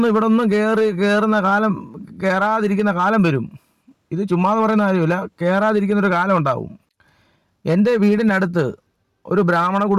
ഇവിടെ ഒന്നും കയറാതിരിക്കുന്ന കാലം വരും. ഇത് ചുമ്മാതെ പറയുന്ന കാര്യമില്ല, കയറാതിരിക്കുന്നൊരു കാലം ഉണ്ടാവും. എൻ്റെ വീടിനടുത്ത് ഒരു ബ്രാഹ്മണ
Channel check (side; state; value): both; identical; correlation 1.00